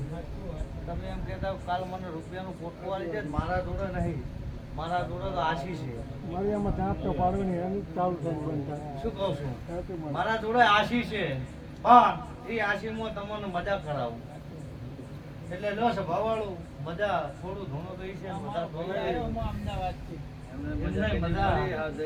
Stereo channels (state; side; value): identical; both; correlation 1.00